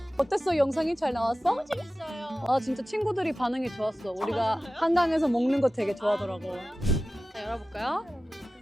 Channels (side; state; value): both; normal; correlation 0.95